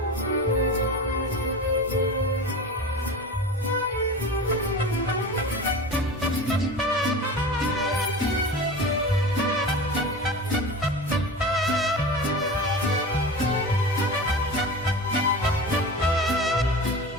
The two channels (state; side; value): normal; both; correlation 0.31